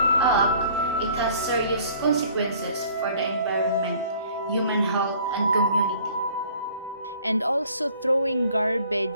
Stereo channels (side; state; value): both; inverted; correlation -0.54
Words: act, it has serious consequences for the environment, human health, and community. And also throwing